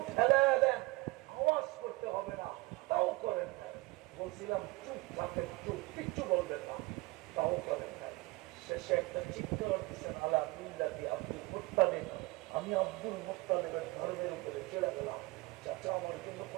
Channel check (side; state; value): left; quieter; 22.3 dB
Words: ঠেলায় দেন, আওয়াজ করতে হবে না, তাও করেন না। বলছিলাম চুপ থাকেন, চুপ, কিচ্ছু বলবেন না, তাও করেন না। শেষে একটা চিৎকার দিচ্ছেন, আলা মিল্লাতি আব্দুল মুত্তালিব, আমি আব্দুল মুত্তালিবের ধর্মের উপরে চলে গেলাম। চাচা আমার জন্য